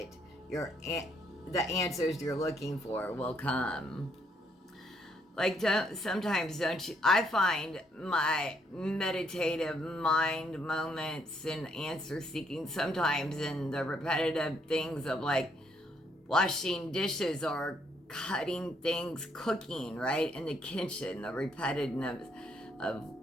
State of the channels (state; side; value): normal; both; correlation 0.71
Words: the answers you're looking for will come. Like, sometimes don't you? I find my meditative mind moments and answer seeking sometimes in the repetitive things of like washing dishes or cutting things, cooking, right? In the kitchen, the repetitiveness